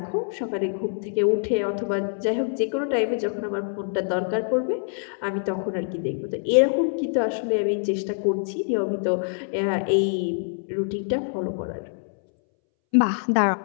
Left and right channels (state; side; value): silent; right; 62 dB below the other